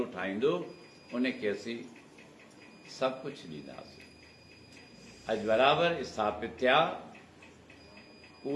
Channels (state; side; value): identical; both; correlation 1.00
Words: ठाहींदो, उनखे असीं सभु कुझु ॾींदासीं। अॼु बराबरि स्थापित थिया।